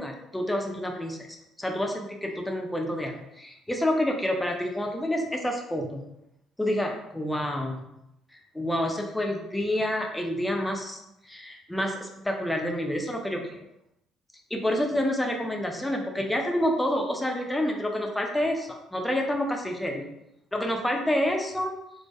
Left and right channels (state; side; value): normal; both; correlation 0.84